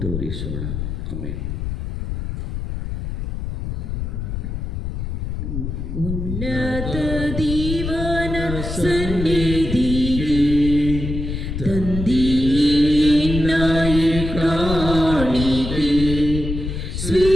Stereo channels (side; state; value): left; noise; rumble, 5 dB below the sound